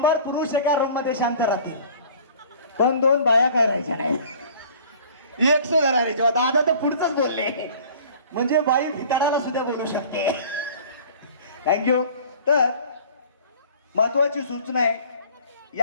पुरुष एका रूम मध्ये शांत राहतील पण 2 बाया काय राहायच्या नाही. 100 राहायच्या. दादा तर पुढचंच बोलले, म्हणजे बाई भिताडाला सुद्धा बोलू शकते. थँक्यू. तर महत्वाची सूचना आहे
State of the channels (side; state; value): both; inverted; correlation -0.48